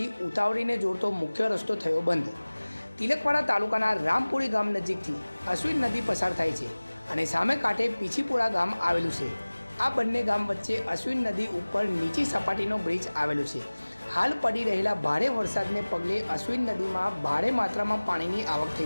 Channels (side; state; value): both; inverted; correlation -1.00